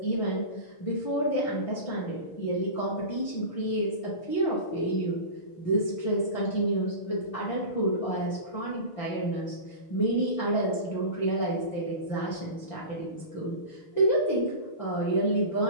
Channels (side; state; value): right; late; 6.5 ms